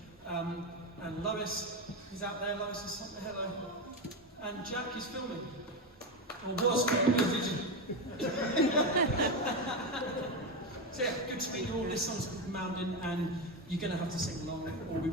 And Lois is out there. Lois is something, hello. And Jack is filming. Or was filming. So yeah, good to meet you all. This song's called Mountain, and you're going to have to sing along, or we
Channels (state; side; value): normal; both; correlation 0.13